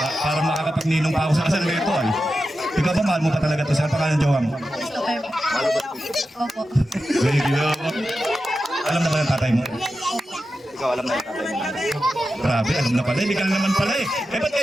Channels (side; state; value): both; normal; correlation 0.91